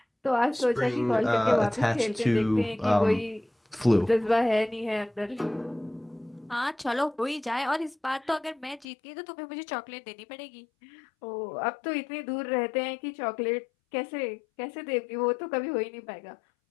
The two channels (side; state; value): right; drops out; at 8.8 s